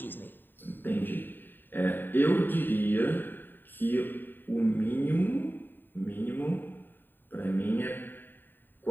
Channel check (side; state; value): right; late; 0.093 ms